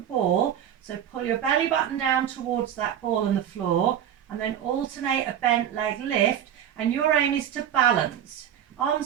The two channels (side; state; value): left; quieter; 9.9 dB